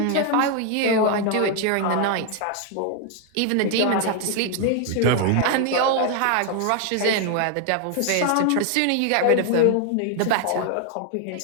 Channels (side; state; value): both; different; correlation 0.01